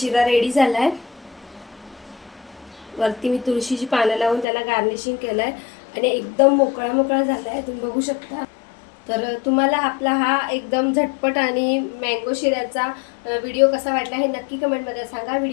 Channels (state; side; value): drops out; right; at 4.5 s